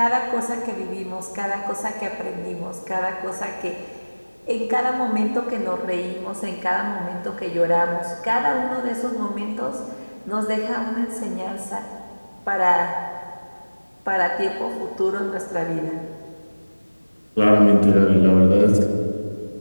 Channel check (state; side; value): inverted; both; correlation -1.00